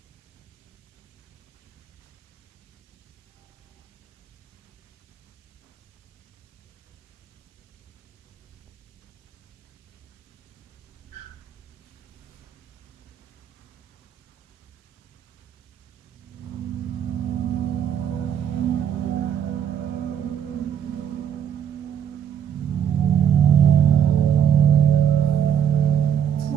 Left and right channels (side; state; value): left; quieter; 8.7 dB